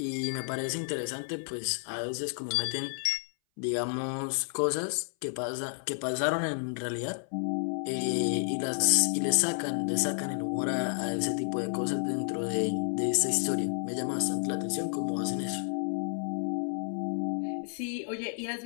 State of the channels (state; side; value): silent; right; 57 dB below the other